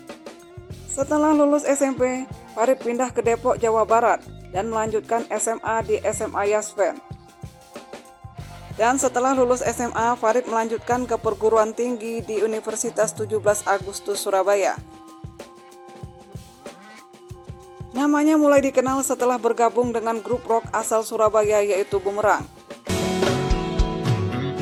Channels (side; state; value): both; identical; correlation 1.00